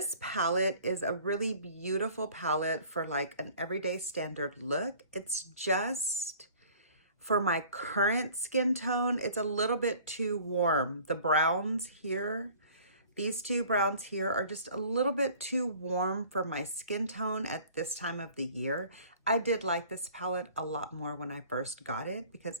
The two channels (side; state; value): both; inverted; correlation -0.50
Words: palette is a really beautiful palette for like an everyday standard look. It's just, for my current skin tone, it's a little bit too warm. The browns here, these two browns here are just a little bit too warm for my skin tone at this time of the year. I did like this palette a lot more when I first got it